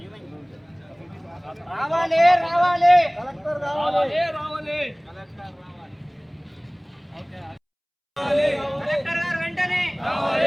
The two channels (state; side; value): identical; both; correlation 1.00